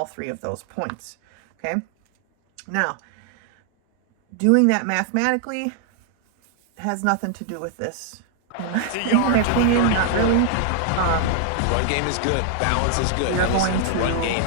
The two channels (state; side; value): different; both; correlation 0.00